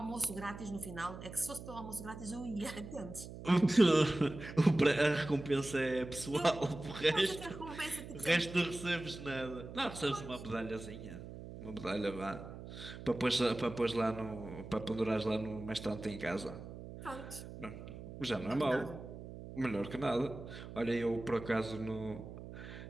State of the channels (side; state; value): right; noise; hum, 12 dB below the sound